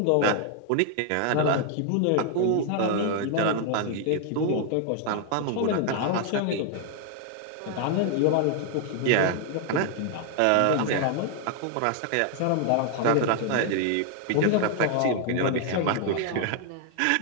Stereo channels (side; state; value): both; different; correlation 0.00